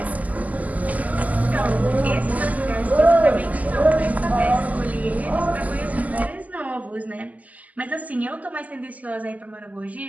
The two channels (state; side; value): late; left; 0.076 ms